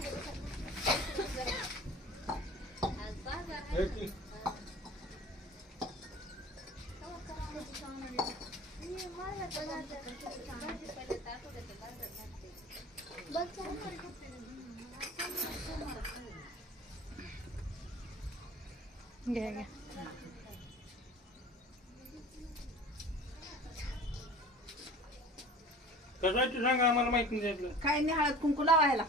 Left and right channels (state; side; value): normal; both; correlation 0.41